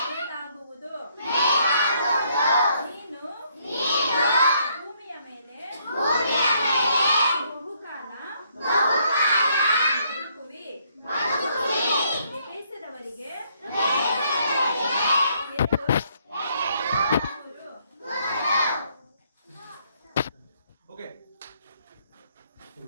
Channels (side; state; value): both; inverted; correlation -0.69